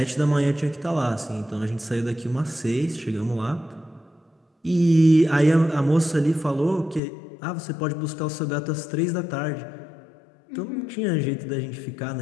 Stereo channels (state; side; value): drops out; right; at 7.0 s